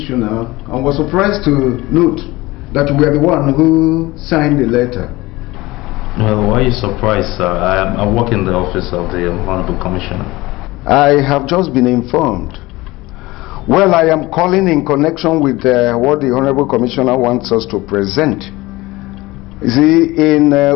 and was surprised to note that you were the one who signed the letter. Well, why are you surprised, sir? I work in the office of the Honorable Commissioner. I have just been informed. Well, I am calling in connection with what the Honorable Commissioner wants us to present. You see, in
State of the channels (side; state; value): right; quieter; 20.1 dB